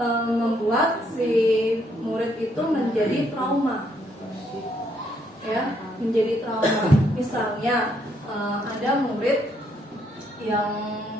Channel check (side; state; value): both; normal; correlation 0.72